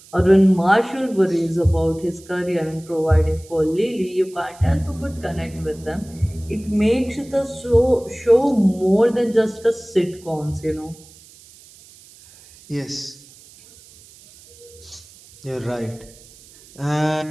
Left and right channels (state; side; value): noise; right; hiss, 23 dB below the sound